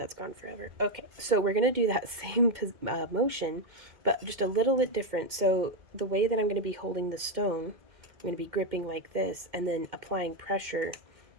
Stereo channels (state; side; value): late; left; 2.2 ms